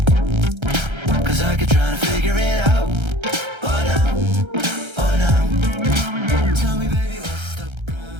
Cause I could try to figure it out. Oh no, oh no. Tell me, baby, what's the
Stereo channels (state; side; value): late; left; 1.3 ms